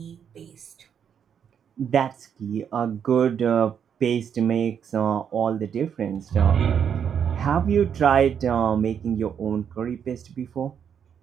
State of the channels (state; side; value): quieter; left; 8.0 dB